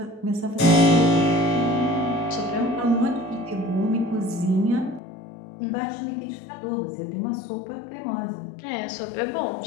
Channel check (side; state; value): right; drops out; at 5.0 s